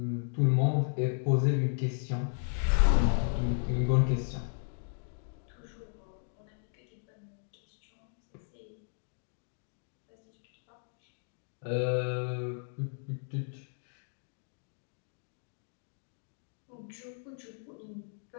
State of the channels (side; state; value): right; silent; digital silence